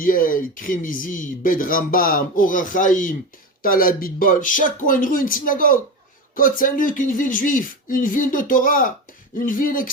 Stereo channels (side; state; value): both; normal; correlation 0.21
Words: Krimizi, Bed Rambam, Orachaim, Talabitbol, chaque coin de rue, une synagogue. Côte Saint-Luc, une ville juive, une ville de Torah, une ville